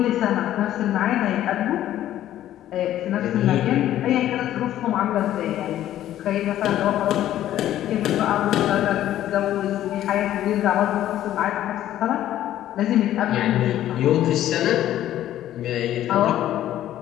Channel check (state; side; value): quieter; right; 12.6 dB